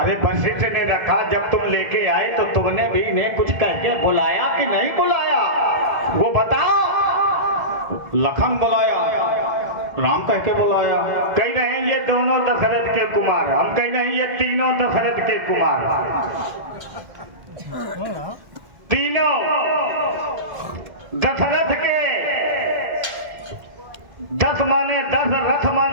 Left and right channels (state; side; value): late; left; 1.7 ms